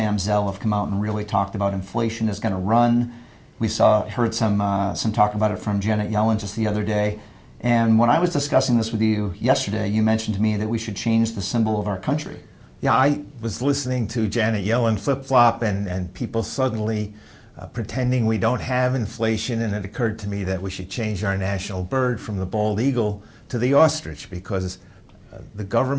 have come out and really talked about inflation is going to run. We heard some talk about it from Janet Yellen just the other day. And when I was discussing this with you yesterday, you mentioned to me that we should change the symbol of our country. Yeah, I was listening to Janet Yellen flip-flop and people suddenly pretending we don't have inflation, and it occurred to me that we should change our national bird from the bald eagle to the ostrich, because the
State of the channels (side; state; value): both; identical; correlation 1.00